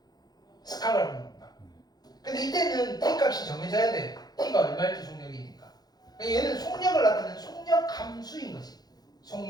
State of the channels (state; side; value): late; right; 0.19 ms